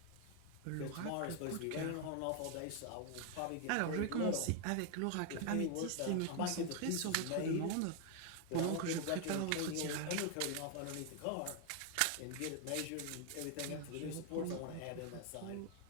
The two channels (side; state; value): both; different; correlation 0.01